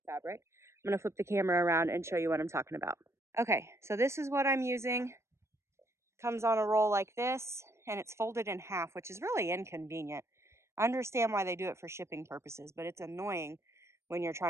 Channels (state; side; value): late; left; 0.13 ms